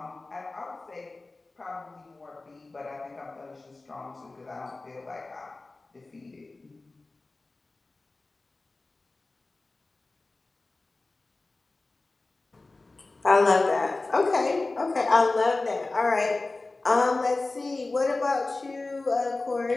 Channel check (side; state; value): right; quieter; 3.3 dB